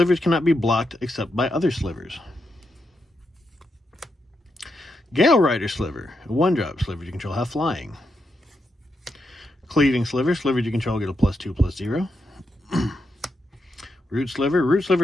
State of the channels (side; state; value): both; normal; correlation 0.84